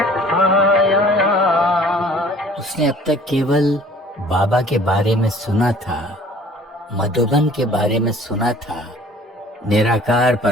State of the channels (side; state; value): both; normal; correlation 0.51